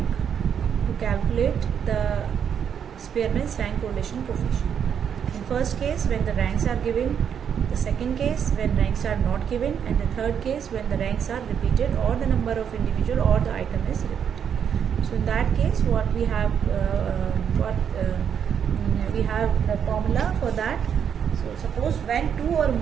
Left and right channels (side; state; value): left; quieter; 8.0 dB